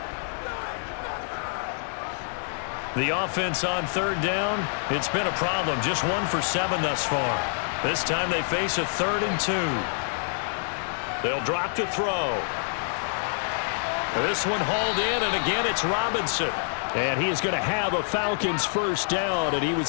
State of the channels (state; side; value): silent; right; digital silence